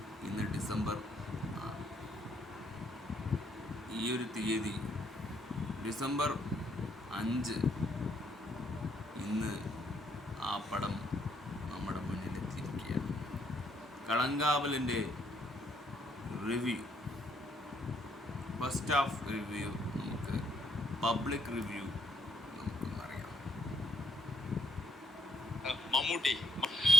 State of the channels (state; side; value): normal; both; correlation 0.70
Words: ഇന്ന് ഡിസംബർ ഈ ഒരു തീയതി ഡിസംബർ 5 ഇന്ന് ആ പടം നമ്മുടെ മുന്നിലെത്തിയിരിക്കുകയാണ്. കളങ്കാവലിൻ്റെ റിവ്യൂ, ഫസ്റ്റ് ഹാഫ് റിവ്യൂ നമുക്ക് പബ്ലിക് റിവ്യൂ നമുക്കൊന്നറിയാം.